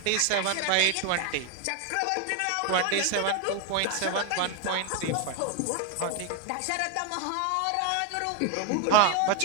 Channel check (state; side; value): different; both; correlation 0.01